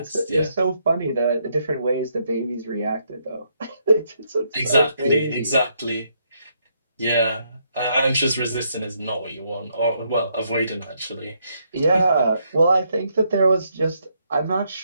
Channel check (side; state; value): both; inverted; correlation -0.75